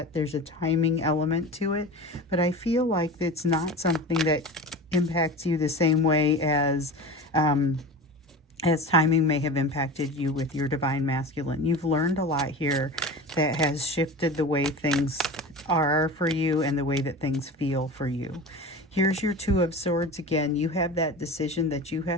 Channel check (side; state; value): both; normal; correlation 0.32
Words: There's a timing element to it, but I feel like it's not something that impacts you the same way as timing may have impacted you with your divine masculine. You've learned a lot here that has shifted the way things are for you and the way that things feel for you. Here's your Two of Swords again. You have that decision that you